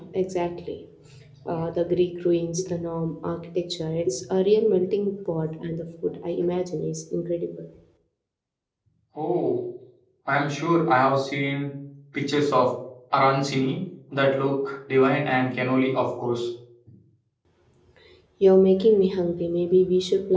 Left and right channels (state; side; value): identical; both; correlation 1.00